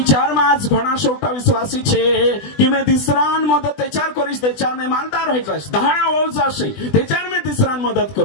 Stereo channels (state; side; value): late; right; 20 ms